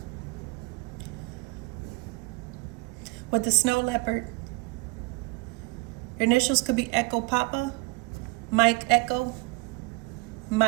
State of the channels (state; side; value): quieter; left; 26.1 dB